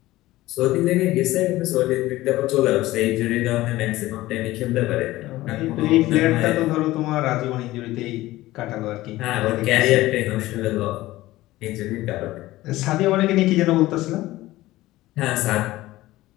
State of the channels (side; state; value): right; quieter; 17.2 dB